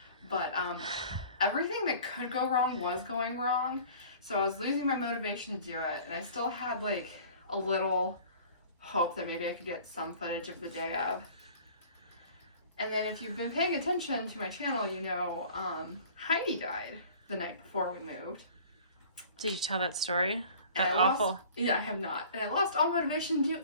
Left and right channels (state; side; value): inverted; both; correlation -0.47